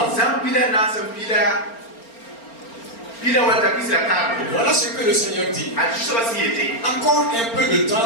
Voilà ce que le Seigneur dit. Encore un peu de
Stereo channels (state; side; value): late; right; 4.4 ms